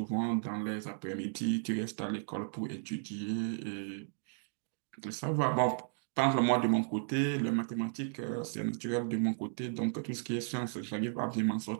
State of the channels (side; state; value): left; silent; digital silence